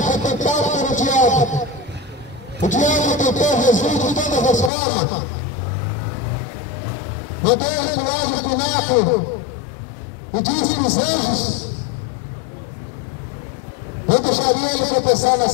foi tentado pelo diabo. O diabo tentou Jesus de todas as formas. Mandou ele para o lado do pináculo e disse que os anjos não deixariam ele tropeçar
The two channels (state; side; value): drops out; right; at 4.7 s